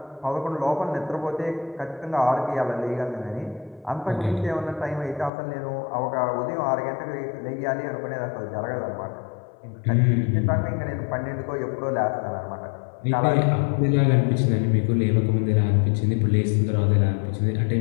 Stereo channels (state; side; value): drops out; right; at 5.3 s